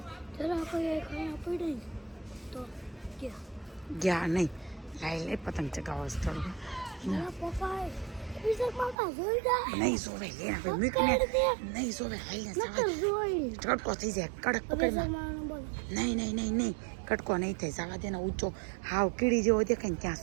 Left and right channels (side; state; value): left; drops out; at 9.0 s